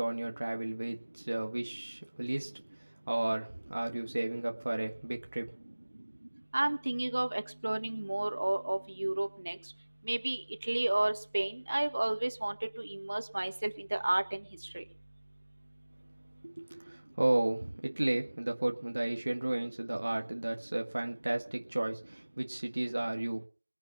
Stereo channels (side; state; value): both; inverted; correlation -1.00